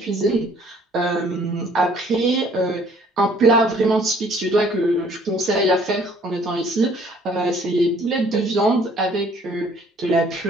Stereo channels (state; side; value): normal; both; correlation 0.58